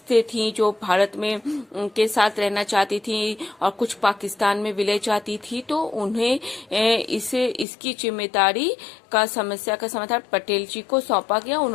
थी जो भारत में के साथ रहना चाहती थी और कुछ पाकिस्तान में विलय चाहती थी। तो उन्हें इसकी जिम्मेदारी का समस्या का समाधान पटेल जी को सौंपा गया।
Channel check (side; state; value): right; drops out; at 7.7 s